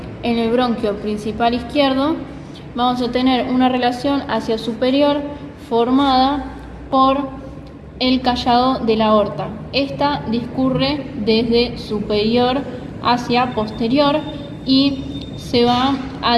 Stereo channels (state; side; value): identical; both; correlation 1.00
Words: en el bronquio principal izquierdo vamos a tener una relación hacia superior formada por el callado de la aorta. Esta discurre desde superior hacia posterior y se va